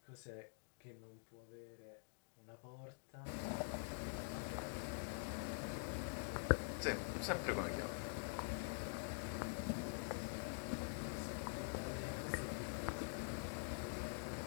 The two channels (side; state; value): right; silent; digital silence